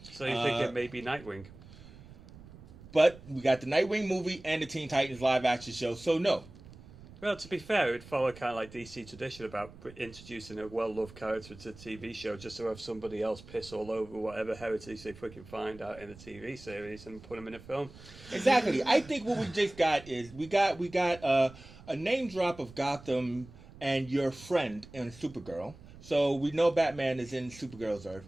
So you think it may be Nightwing? But we got the Nightwing movie and the Teen Titans live action show, so no. Well, to be fair, it would follow kind of like DC tradition about introducing a well-loved character to a TV show just to have somebody else piss all over whatever heritage they freaking find out in the TV series and put them in a film. Exactly. I think what we just got is we got a name drop of Gotham and your friend in Supergirl. So we know Batman is in Supergirl's Earth.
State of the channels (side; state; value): right; noise; rumble, 19 dB below the sound